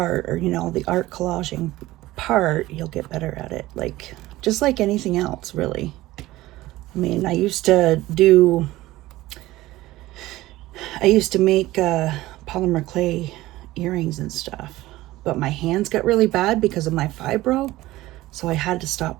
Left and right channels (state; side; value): quieter; left; 17.3 dB